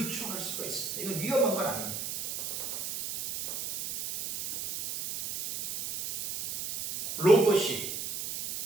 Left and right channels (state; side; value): noise; right; hiss, 6 dB below the sound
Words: 수가 있습니다. 이건 위험한 건 아닙니다. 로봇이